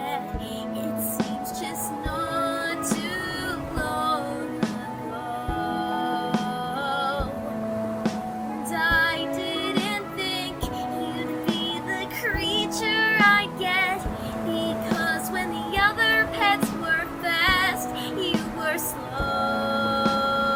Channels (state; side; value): identical; both; correlation 1.00